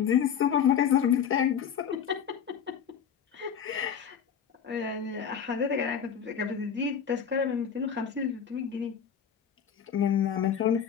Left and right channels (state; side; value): quieter; right; 7.8 dB